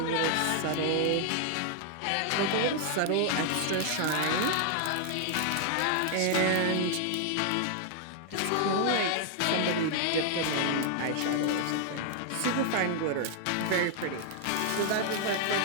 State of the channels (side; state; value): both; different; correlation 0.00